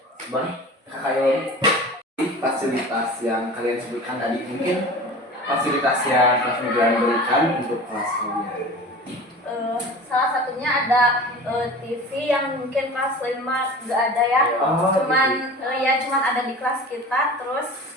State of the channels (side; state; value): both; normal; correlation 0.37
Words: boleh kakak Yoli, fasilitas yang kalian sebutkan tadi mungkin fasilitas yang kelas migran berikan untuk kelas kalian. Salah satunya ada TV yang mungkin kelas 5 nggak ada ya. Oh, Cuman ada di kelas kita, terus